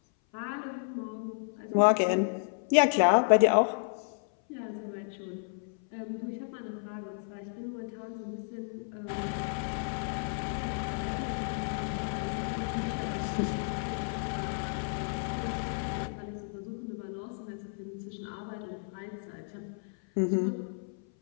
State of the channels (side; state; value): right; silent; 56 dB below the other